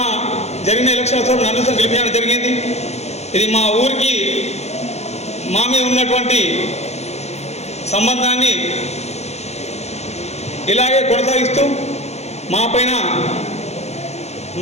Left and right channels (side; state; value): right; late; 0.31 ms